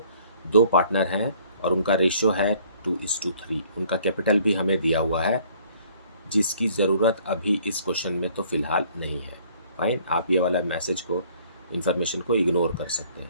दो partner हैं और उनका ratio है 2:3। उनका capital भी हमें दिया हुआ है, जिसकी ज़रूरत अभी इस क्वेश्चन में तो फ़िलहाल नहीं है। फाइन, आप ये वाला मैसेज को, इन्फॉर्मेशन को इग्नोर कर सकते हैं।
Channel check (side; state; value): both; inverted; correlation -0.59